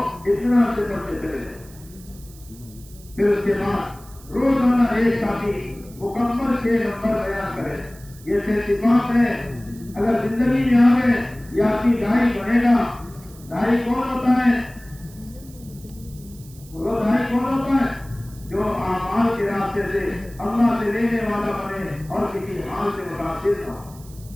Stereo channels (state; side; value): noise; right; hiss, 22 dB below the sound